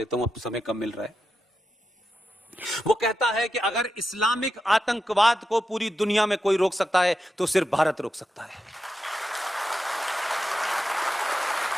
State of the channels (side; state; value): both; normal; correlation 0.88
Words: हूं, अब समय कम मिल रहा है। वो कहता है कि अगर इस्लामिक आतंकवाद को पूरी दुनिया में कोई रोक सकता है तो सिर्फ भारत रोक सकता है।